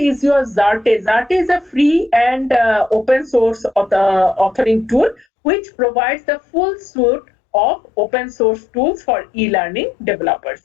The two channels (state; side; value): drops out; right; at 5.2 s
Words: your Zarte. Zarte is a free and open source authoring tool which provides the full suite of open source tools for e-learning